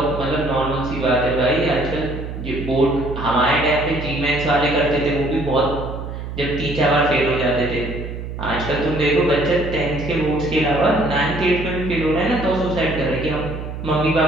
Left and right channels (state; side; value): noise; right; hum, 8 dB below the sound